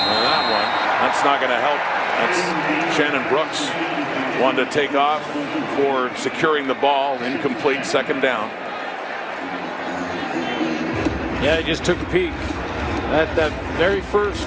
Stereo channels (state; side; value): identical; both; correlation 1.00